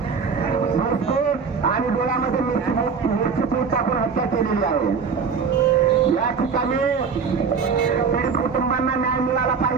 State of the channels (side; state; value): left; quieter; 5.8 dB